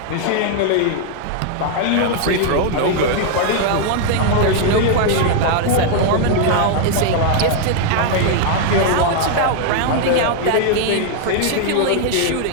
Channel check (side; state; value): both; different; correlation 0.00